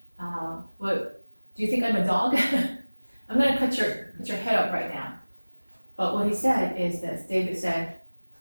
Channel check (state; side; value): inverted; both; correlation -1.00